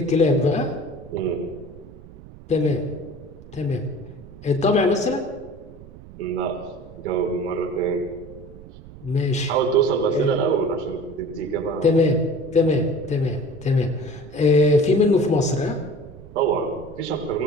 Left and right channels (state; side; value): noise; right; rumble, 18 dB below the sound